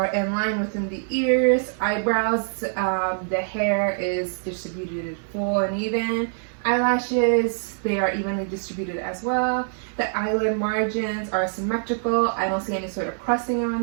in line within the ears, eyebrows, the hair is distributed full and even. Eyelashes, they are evenly distributed as well. The eyelid margins are symmetrical. I don't see any sort of crusting around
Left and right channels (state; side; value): silent; left; 59 dB below the other